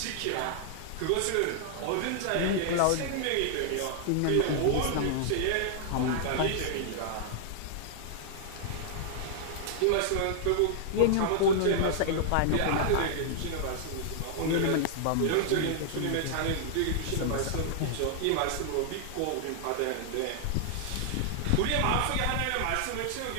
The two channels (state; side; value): different; both; correlation -0.01